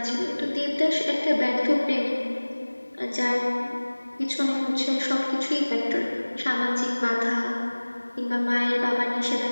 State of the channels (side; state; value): both; inverted; correlation -1.00